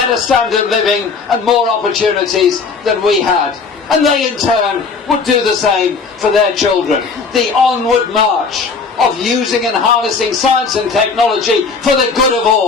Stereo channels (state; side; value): quieter; right; 4.9 dB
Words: standard of living and more opportunities than we had. And they in turn would do the same for their children. The onward march of using and harnessing science and technology for the good of